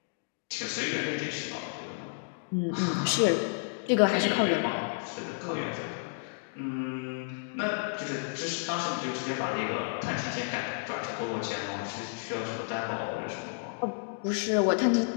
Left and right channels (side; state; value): right; silent; digital silence